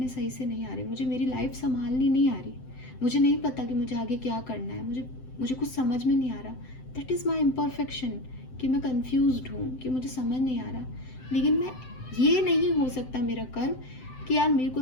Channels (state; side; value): late; right; 7.8 ms